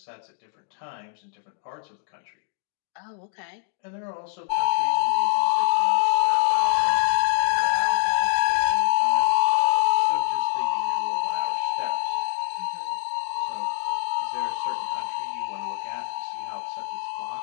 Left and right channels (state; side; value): silent; right; digital silence